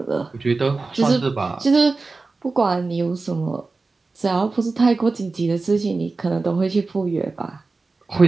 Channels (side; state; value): left; quieter; 3.8 dB